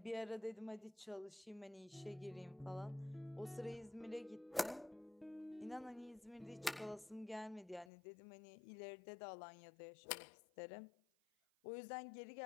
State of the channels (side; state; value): right; drops out; at 7.9 s